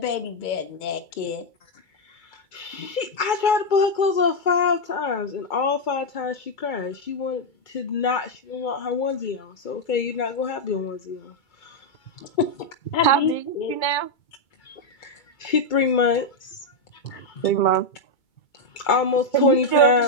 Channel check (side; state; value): right; late; 2.3 ms